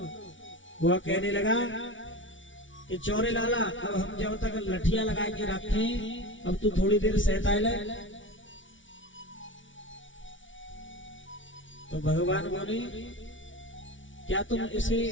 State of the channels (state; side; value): late; right; 0.56 ms